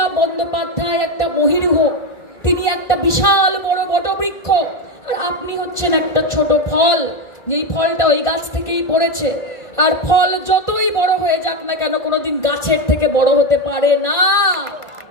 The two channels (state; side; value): late; right; 1.5 ms